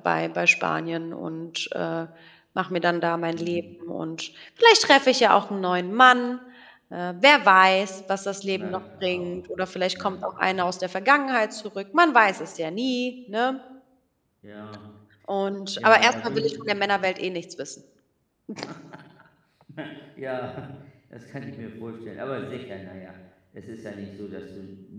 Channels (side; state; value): both; identical; correlation 1.00